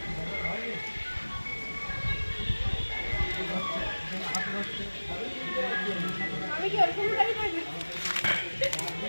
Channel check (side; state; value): both; inverted; correlation -1.00